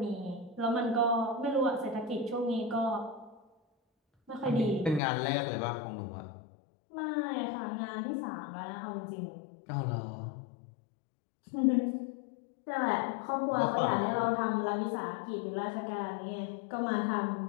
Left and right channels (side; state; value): right; drops out; at 5.0 s